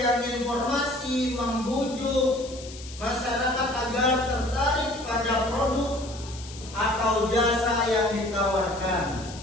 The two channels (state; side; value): noise; left; hiss, 16 dB below the sound